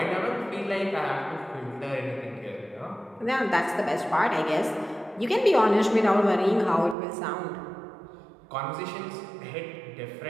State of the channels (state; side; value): drops out; left; at 7.0 s